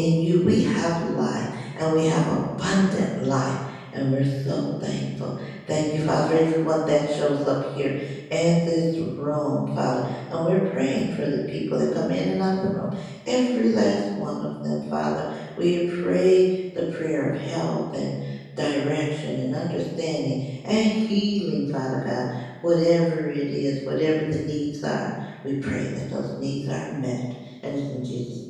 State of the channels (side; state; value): both; identical; correlation 1.00